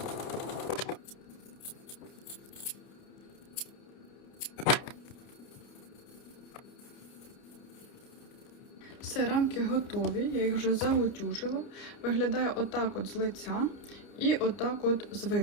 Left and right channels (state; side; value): late; right; 30 ms